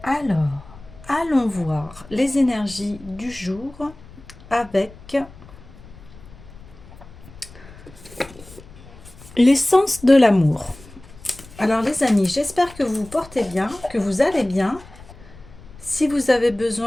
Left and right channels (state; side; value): noise; left; rumble, 20 dB below the sound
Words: Alors, allons voir les énergies du jour avec l'essence de l'amour. Alors les amis, j'espère que vous vous portez bien, que vous allez bien. Si vous avez